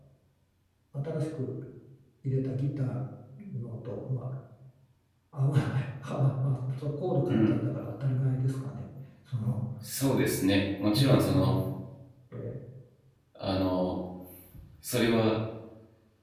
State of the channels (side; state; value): both; identical; correlation 1.00